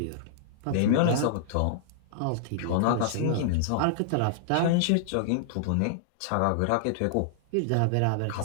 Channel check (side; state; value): both; different; correlation -0.01